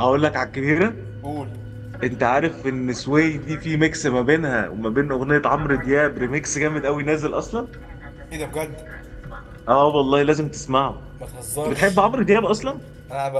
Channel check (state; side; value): identical; both; correlation 1.00